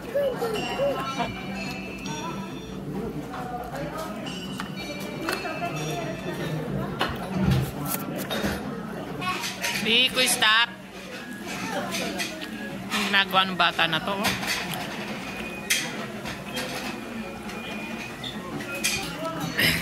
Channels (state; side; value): identical; both; correlation 1.00